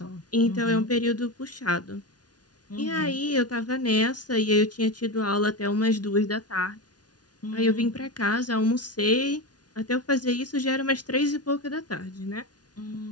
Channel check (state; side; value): late; right; 0.69 ms